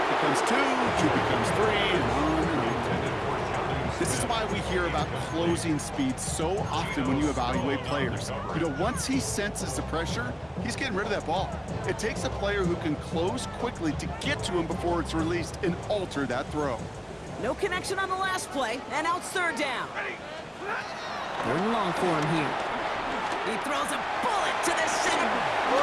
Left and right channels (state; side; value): identical; both; correlation 1.00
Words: becomes 2 becomes 3, and on and on. This is why we hear about closing speed so often when you evaluate players. You know, once he senses the pressure, he's getting rid of that ball. It takes a player who can close quickly to get to him before it's released and alter that throw. No connection on the last play, and now it's third down. Third and long for him here. He throws a bullet to the center.